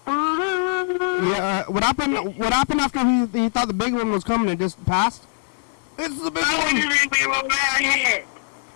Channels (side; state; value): right; silent; digital silence